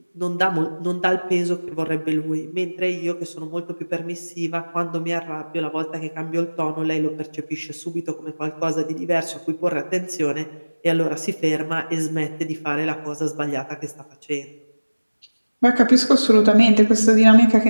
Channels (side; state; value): both; inverted; correlation -1.00